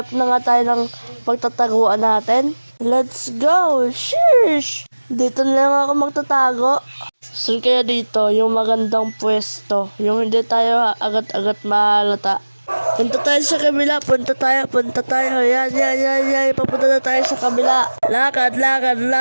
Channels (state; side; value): inverted; both; correlation -1.00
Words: na nga tayo ng pagtataguan natin. Let's go! Sheesh! Dito na lang ako magtatago. Saan kaya dito? Yung magandang pwesto. Yung hindi tayo agad-agad mahalata. Punta tayo sa kabila. Punta tayo. Yan. Papunta na tayo sa kabila. Lakad.